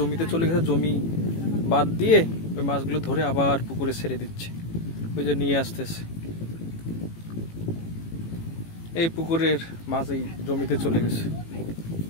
চলে গেছে, জমি বাদ দিয়ে ওই মাছগুলো ধরে আবার পুকুরে ছেড়ে দিচ্ছে, ওই যে নিয়ে আসতেছে। এই পুকুরের মাছ এই জমিতে চলে গেছে,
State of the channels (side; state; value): right; late; 18 ms